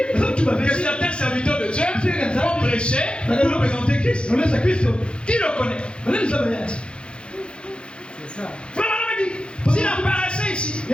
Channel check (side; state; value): right; late; 0.056 ms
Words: que certains serviteurs de Dieu vont prêcher pour présenter Christ. Qui le connaît? C'est ça. Frère Branham dit, s'il apparaissait ici,